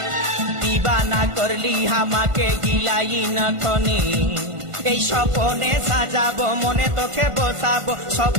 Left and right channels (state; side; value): late; left; 1.5 ms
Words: দিবানা করলি হামাকে গিলাই নখনি। এই স্বপনে সাজাবো মনে তোকে বসাবো,